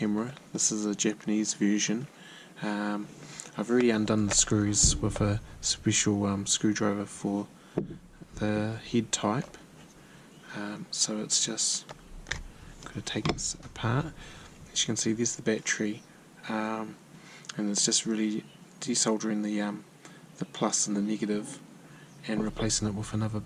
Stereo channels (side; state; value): both; identical; correlation 1.00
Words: This is a Japanese version. I've already undone the screws with a special screwdriver for the head type. So it's just got to take this apart. As you can see, there's the battery, and it's just really desoldering the plus and the negative and replacing it with another